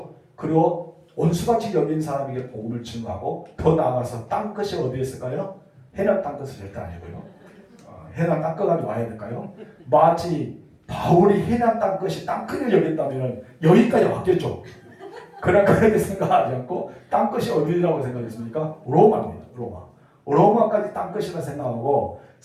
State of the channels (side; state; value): both; identical; correlation 1.00